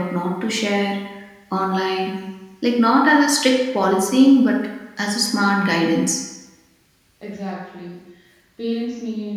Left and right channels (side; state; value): both; identical; correlation 1.00